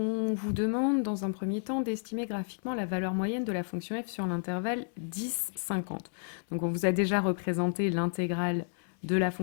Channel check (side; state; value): right; silent; 57 dB below the other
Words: vous demande dans un premier temps d'estimer graphiquement la valeur moyenne de la fonction f sur l'intervalle 10-50. Donc on vous a déjà représenté l'intégrale de la